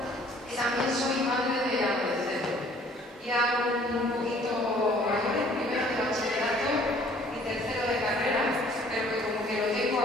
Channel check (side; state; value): both; normal; correlation 0.57